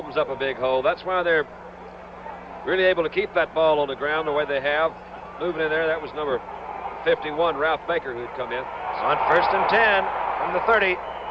up a big hole. That's why they're really able to keep that ball on the ground the way they have. Moving in there, that was number 51, Ralph Baker, who'd come in. It's on 1st and 10 from the 30.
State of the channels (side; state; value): both; identical; correlation 1.00